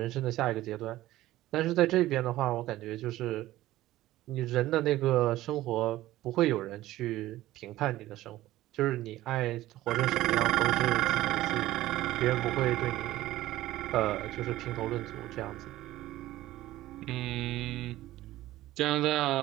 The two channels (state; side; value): quieter; left; 15.7 dB